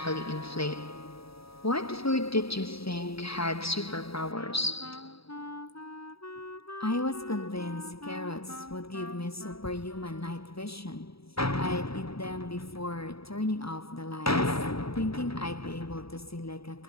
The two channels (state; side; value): late; right; 0.77 ms